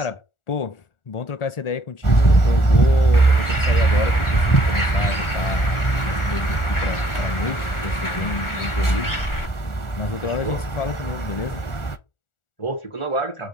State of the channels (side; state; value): right; late; 1.4 ms